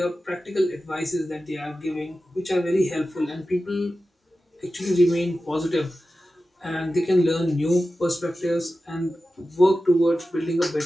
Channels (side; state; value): both; normal; correlation 0.94